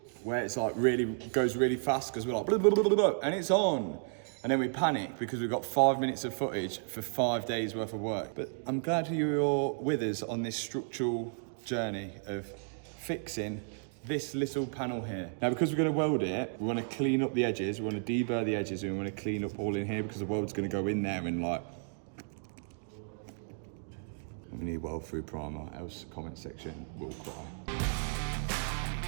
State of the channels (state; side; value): silent; left; digital silence